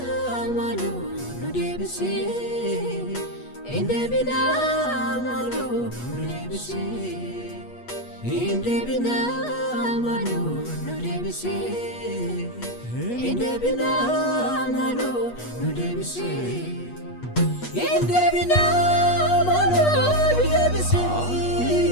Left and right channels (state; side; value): late; right; 8.3 ms